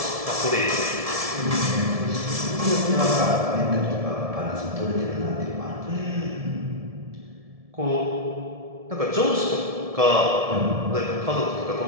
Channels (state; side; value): late; left; 1.7 ms